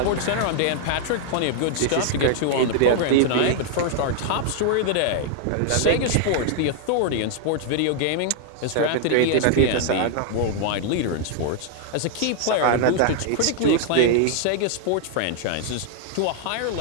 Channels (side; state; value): both; different; correlation 0.00